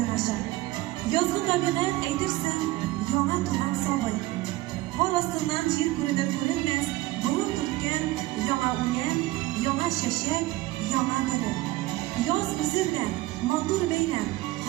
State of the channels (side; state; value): left; quieter; 18.2 dB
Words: ача. Язгы табигать әйтерсең, яңа туган сабый. Кар астыннан җир күренер-күренмәс, бурын төрткән яңа үлән, яңа чәчәк, яңа нуры. Яз үзендә матур бәйрәм,